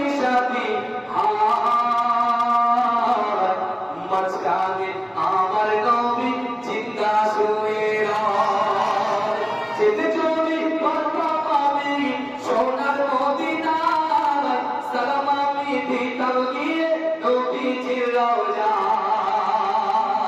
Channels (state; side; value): identical; both; correlation 1.00